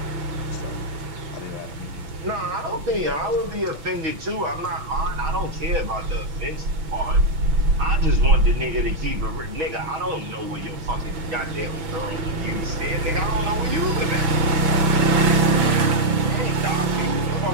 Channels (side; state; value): left; late; 6.0 ms